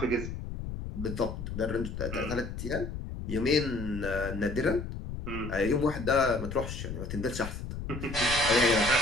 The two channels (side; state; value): left; noise; rumble, 7 dB below the sound